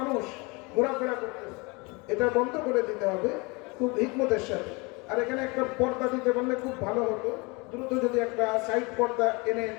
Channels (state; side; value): quieter; right; 27.3 dB